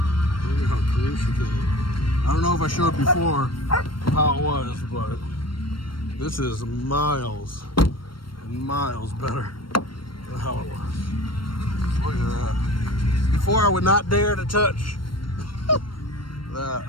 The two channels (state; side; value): late; right; 0.73 ms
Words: before how it was, but this is miles and miles better than how it was. Look at that. Before I would not dare to touch